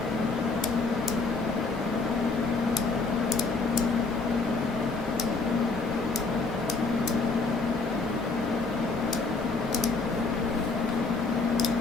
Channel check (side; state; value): right; quieter; 3.9 dB